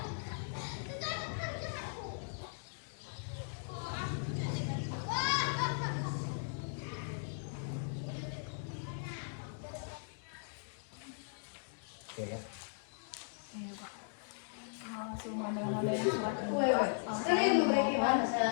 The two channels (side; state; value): right; silent; digital silence